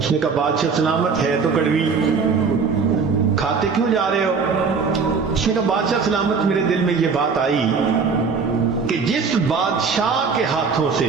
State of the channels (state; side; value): quieter; left; 5.3 dB